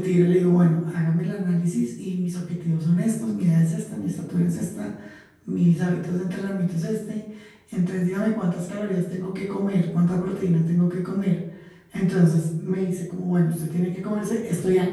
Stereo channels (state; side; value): identical; both; correlation 1.00